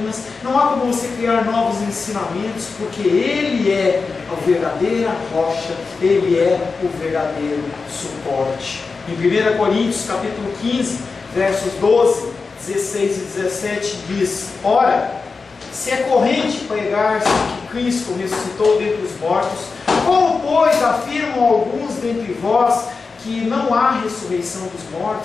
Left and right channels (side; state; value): right; quieter; 4.5 dB